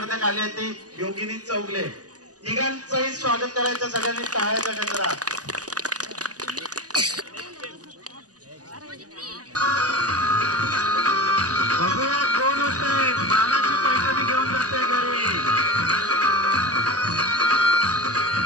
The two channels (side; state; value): left; late; 0.67 ms